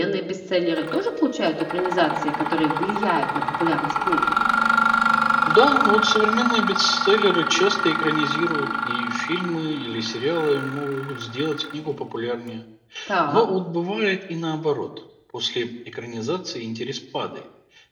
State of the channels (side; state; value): both; identical; correlation 1.00